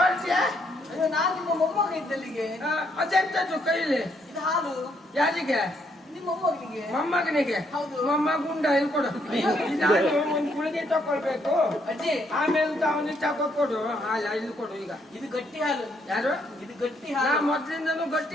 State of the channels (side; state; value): both; normal; correlation 0.72